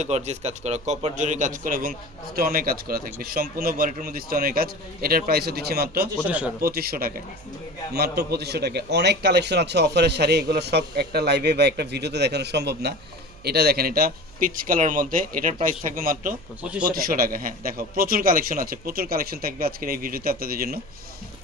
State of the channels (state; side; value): noise; right; hum, 22 dB below the sound